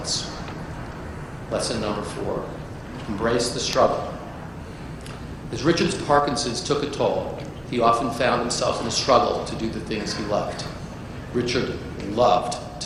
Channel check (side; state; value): both; identical; correlation 1.00